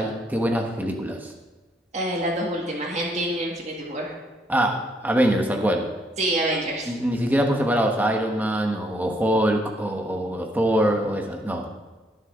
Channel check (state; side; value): normal; both; correlation 0.71